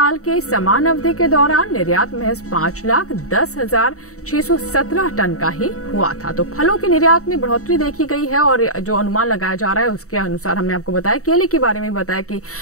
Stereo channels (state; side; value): late; right; 0.65 ms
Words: के समान अवधि के दौरान निर्यात महज 5,10,617 टन का ही हुआ था। तो फलों के निर्यात में बढ़ोतरी देखी गई है और जो अनुमान लगाया जा रहा है उसके अनुसार हमने आपको बताया। केले के बारे में बताया कि